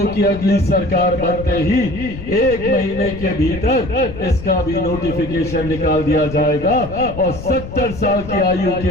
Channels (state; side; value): noise; left; rumble, 11 dB below the sound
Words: की अगली सरकार बनते ही 1 महीने के भीतर इसका भी नोटिफिकेशन निकाल दिया जाएगा और 70 साल की आयु